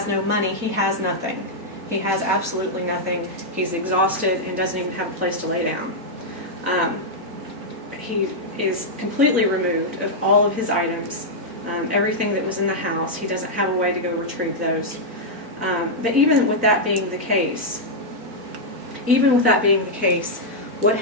no money, he has nothing. He has absolutely nothing. He's exhausted and doesn't even have a place to lay down. He is completely removed of all of his items, everything that was in the house. He doesn't have a way to go retrieve those. But even with that being the case, what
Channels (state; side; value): late; left; 4.4 ms